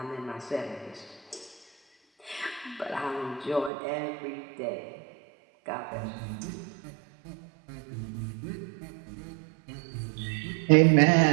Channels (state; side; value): drops out; left; at 3.7 s